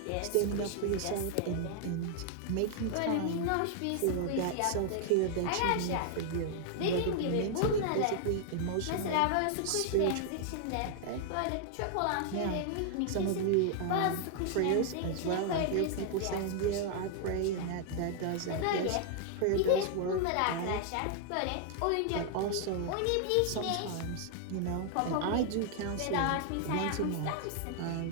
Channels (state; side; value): different; both; correlation 0.00